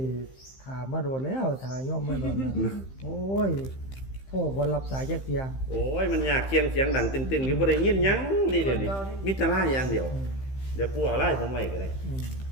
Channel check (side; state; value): right; late; 15 ms